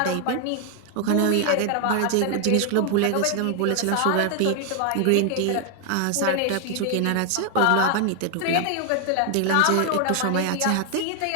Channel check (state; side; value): different; both; correlation 0.00